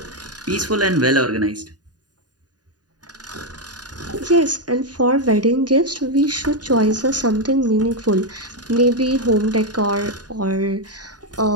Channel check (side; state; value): left; late; 0.69 ms